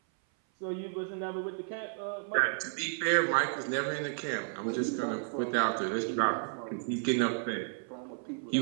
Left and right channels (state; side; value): silent; left; 56 dB below the other